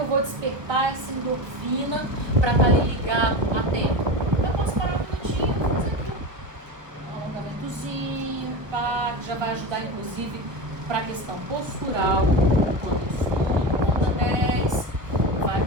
vou despertar essa endorfina para estar ali ligado, atento? Eu posso parar um minutinho e fazer aquilo. Um alongamentozinho, tá? Que já vai ajudar, inclusive, para a questão postural. Quando eu estudo, conta 10, vai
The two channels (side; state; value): left; late; 1.1 ms